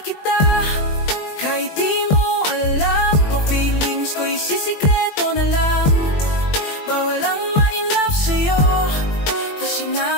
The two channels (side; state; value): right; late; 20 ms